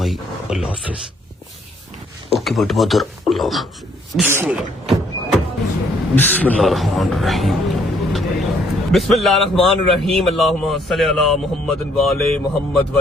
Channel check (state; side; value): normal; both; correlation 0.66